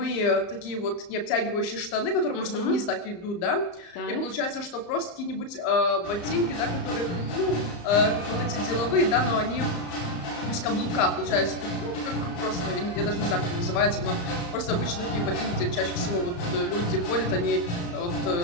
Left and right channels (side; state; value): right; late; 34 ms